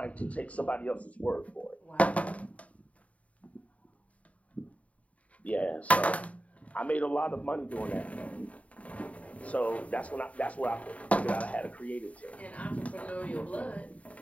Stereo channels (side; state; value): right; late; 0.067 ms